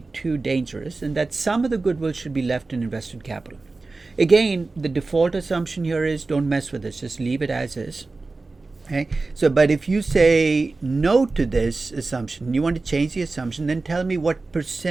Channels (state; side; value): quieter; left; 3.6 dB